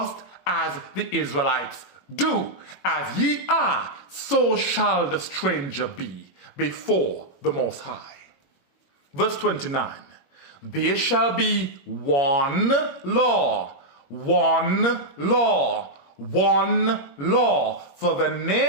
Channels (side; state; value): right; late; 21 ms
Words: as the Israelites do. As ye are, so shall the stranger be before the Most High. Verse 29, "There shall be one law, one law, one law for the